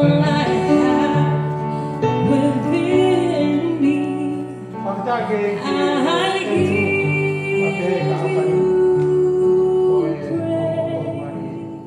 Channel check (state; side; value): identical; both; correlation 1.00